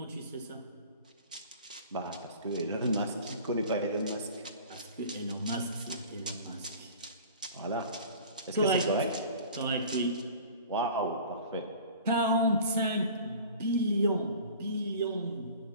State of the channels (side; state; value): both; inverted; correlation -0.43